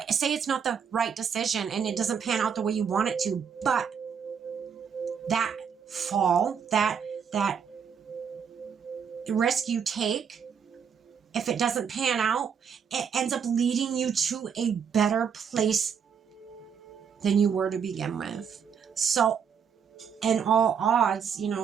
say it's not the right decision and it doesn't pan out the way you want it to, but that fall, that risk you take, if it doesn't pan out, it ends up leading you to a better place than you were to begin with. So, in all odds, you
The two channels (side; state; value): left; quieter; 7.1 dB